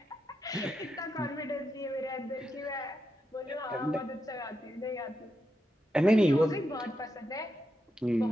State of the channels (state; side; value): normal; both; correlation 0.85